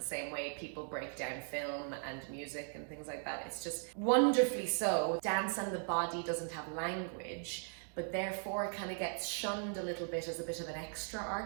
same way people break down film and music and things like that. It's just wonderfully so. Dance and the body doesn't have language, but therefore it kind of gets shunned a little bit as a bit of an extra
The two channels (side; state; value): left; silent; 52 dB below the other